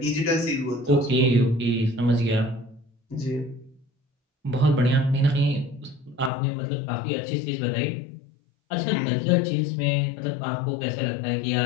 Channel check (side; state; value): right; drops out; at 6.3 s